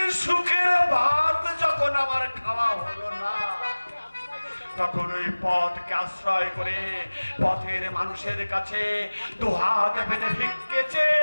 সুখের ভাত যখন আমার খাওয়া হলো না, তখন ওই পথকে আশ্রয় করে পথের মানুষের কাছে দুহাত পেতে ভিক্ষেছে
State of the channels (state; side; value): inverted; both; correlation -1.00